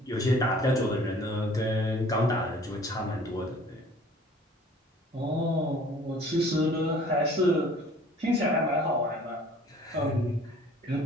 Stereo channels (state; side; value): normal; both; correlation 0.51